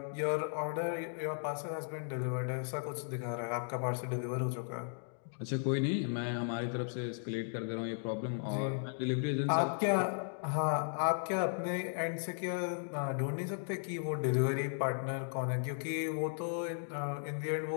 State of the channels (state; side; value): silent; right; digital silence